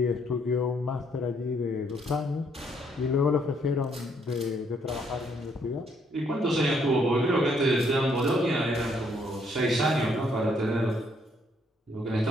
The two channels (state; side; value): normal; both; correlation 0.69